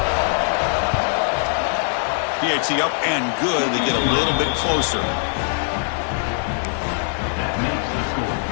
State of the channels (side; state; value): right; silent; digital silence